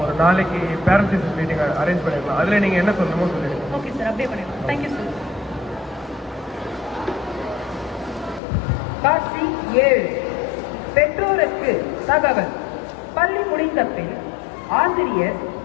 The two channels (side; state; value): right; drops out; at 8.4 s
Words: ஒரு நாளைக்கு பேரண்ட்ஸ் டீச்சர்ஸ் மீட்டிங் அரேஞ்ச் பண்ணிருக்கலாம். அதில் நீங்கள் என்ன சொல்லணுமோ சொல்லிடுங்க. ஓகே சார், அப்படியே பண்ணிடுறோம். Thank you sir. காட்சி 7. பெற்றோருக்கு தகவல். பள்ளி முடிந்த பின் ஆசிரியர்